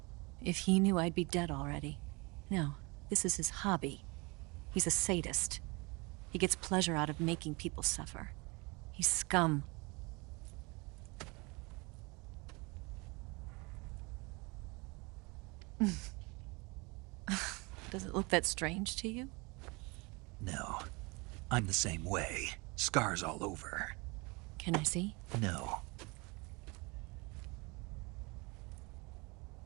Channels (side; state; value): left; quieter; 27.2 dB